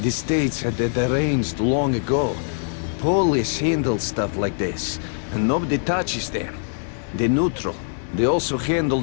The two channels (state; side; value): silent; right; digital silence